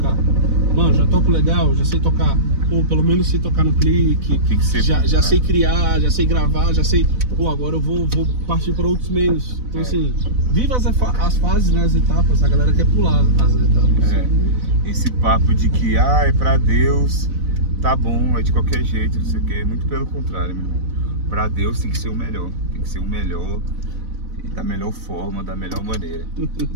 Mano, já toco legal, já sei tocar. Ou pelo menos sei tocar no clique, tem que ser já sei criar, já sei gravar, já sei. Pô, agora eu vou partir para outros meios. Então assim, viva as fases, né, as etapas, a galera quer pular as etapas. Esse papo de que é pra Deus, tá bom, é de qualquer jeito, não sei o que. Muito pelo contrário, meu irmão. Pra Deus tem que ser o melhor. Tem que ser o melhor. Da melhor forma, da melhor maneira.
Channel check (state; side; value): late; left; 4.0 ms